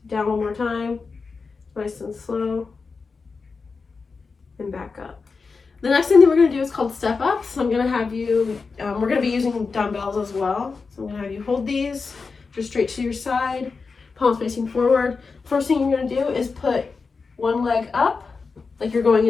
Down one more time, nice and slow, and back up. The next thing that we're going to do is called step up. So I'm going to have you, we're going to be using dumbbells as well. So I'm going to have you hold these just straight to your side, palms facing forward. First thing you're going to do is put one leg up, like you're going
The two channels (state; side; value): quieter; right; 4.7 dB